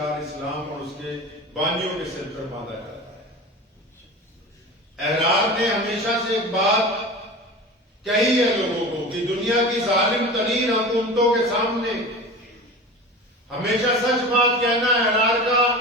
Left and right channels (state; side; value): normal; both; correlation 0.33